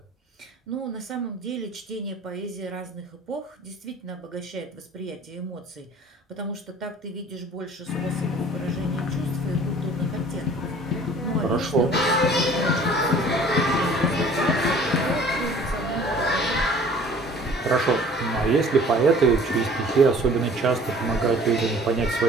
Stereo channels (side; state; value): both; normal; correlation 0.50